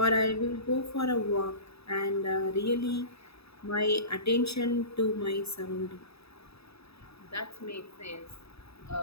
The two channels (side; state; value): right; late; 0.78 ms